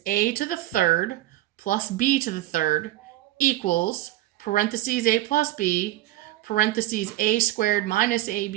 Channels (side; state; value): left; quieter; 15.9 dB